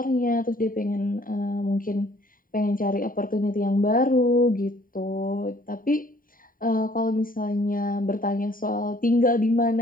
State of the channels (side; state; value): right; late; 0.41 ms